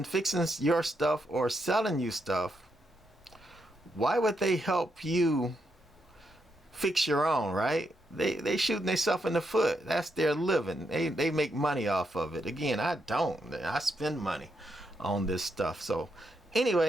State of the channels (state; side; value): normal; both; correlation 0.80